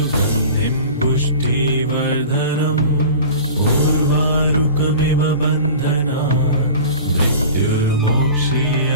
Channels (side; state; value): both; inverted; correlation -0.38